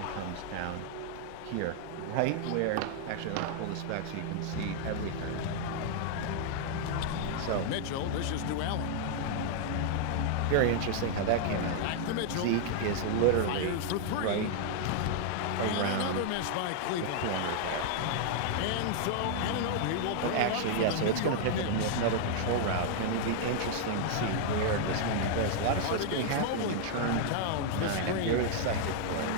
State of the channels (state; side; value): different; both; correlation -0.01